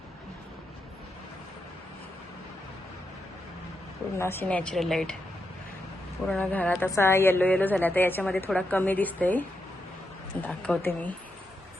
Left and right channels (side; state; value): both; normal; correlation 0.84